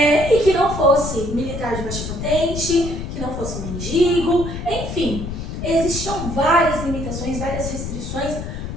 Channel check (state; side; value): noise; left; rumble, 6 dB below the sound